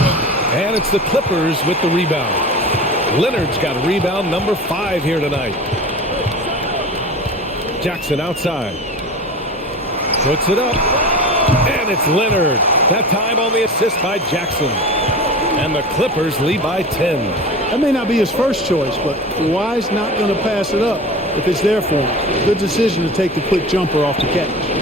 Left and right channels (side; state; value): both; normal; correlation 0.33